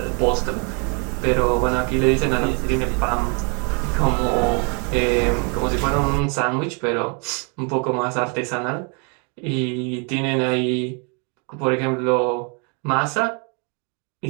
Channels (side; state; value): left; quieter; 36.0 dB